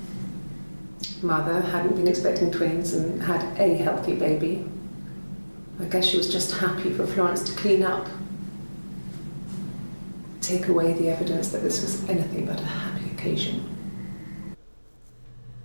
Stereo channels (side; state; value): both; inverted; correlation -1.00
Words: Mother hadn't been expecting twins and had a healthy baby. I guess she was just happy for Florence to clean up. Take away the evidence that this was anything but a happy occasion.